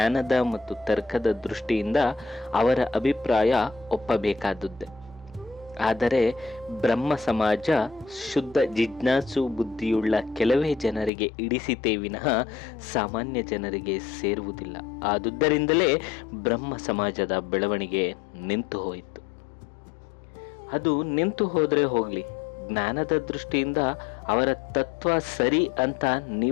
ಮತ್ತು ತರ್ಕದ ದೃಷ್ಟಿಯಿಂದ ಅವರ ಅಭಿಪ್ರಾಯ ಒಪ್ಪಬೇಕಾದದ್ದೇ. ಆದರೆ ಬ್ರಹ್ಮ ಸಮಾಜ ಶುದ್ಧ ಜಿಜ್ಞಾಸು ಬುದ್ಧಿಯುಳ್ಳ ಕೆಲವೇ ಜನರಿಗೆ ಇಡಿಸಿತೇ ವಿನಃ ಸಾಮಾನ್ಯ ಜನರಿಗೆ ಸೇರುವುದಿಲ್ಲ. ಆದುದರಿಂದಲೇ ಬ್ರಹ್ಮ ಸಮಾಜದ ಬೆಳವಣಿಗೆ ನಿಂತು ಹೋಯಿತು. ಅದು ನಿಂತು ಹೋದರೆ ಹೋಗಲಿ, ಜ್ಞಾನದ ದೃಷ್ಟಿಯಿಂದ ಅವರ ತತ್ವ ಸರಿ ಅಂತ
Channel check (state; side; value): drops out; right; at 11.1 s